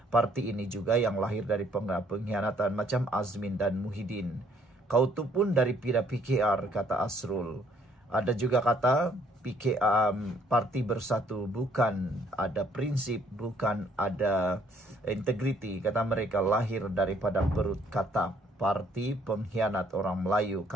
Parti ini juga yang lahir dari pengkhianatan macam Azmin dan Muhyiddin. Kau tu pun dari pira PKR, kata Asrul. Ada juga kata parti Bersatu bukan ada prinsip, bukan ada integriti. Kata mereka lahir daripada perut kata. Parti pengkhianat orang Melayu,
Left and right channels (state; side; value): normal; both; correlation 0.65